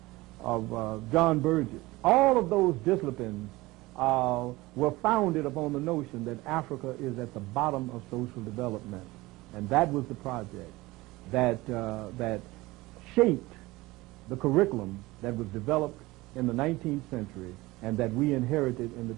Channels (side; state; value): left; quieter; 20.3 dB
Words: John Burgess, all of those disciplines were founded upon the notion that Africa is at the bottom of social development. And that was the project that shaped the curriculum that was developed in the 19th century and that we inherited in the